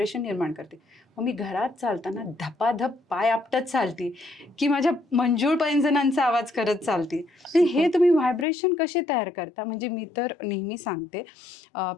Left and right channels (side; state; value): right; drops out; at 8.5 s